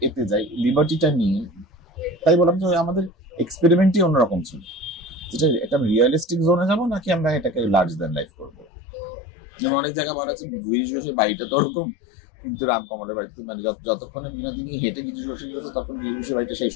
এতে যাই, লিবার্টিটা নিয়ে, তাই বললাম যে আমাদের এক্সপেরিমেন্টই অন্যরকম ছিল, যেটা একটা রিয়েলিস্টিক জোনে যাবো নাকি আমরা এটাকে লার্জ দেন লাইফ করবো। যেমন অনেক জায়গায় বলা আছে গিরিশ ঘোষের বাড়িটা তো ওরকম, কিন্তু রামকমলের বাড়িতে মানে যতক্ষণে বিনোদিনী হেঁটে গিরিশ ঘোষের গেছে, তখন গিরিশ ঘোষের বাড়িটা শেষ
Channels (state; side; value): drops out; right; at 8.7 s